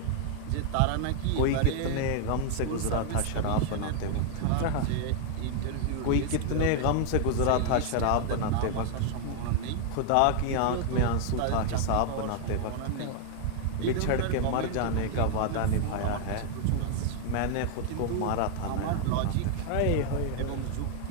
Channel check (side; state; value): both; different; correlation 0.00